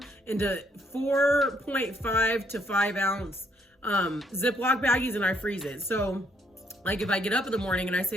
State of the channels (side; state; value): both; normal; correlation 0.70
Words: into 4.5 to 5 ounce Ziploc baggies, and I freeze it. So like if I get up in the morning and I